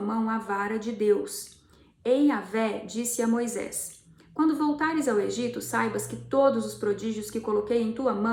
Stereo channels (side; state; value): both; identical; correlation 1.00